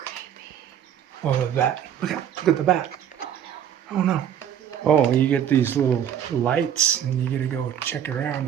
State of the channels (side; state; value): left; quieter; 9.4 dB